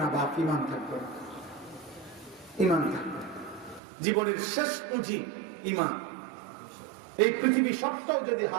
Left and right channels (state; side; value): drops out; left; at 3.8 s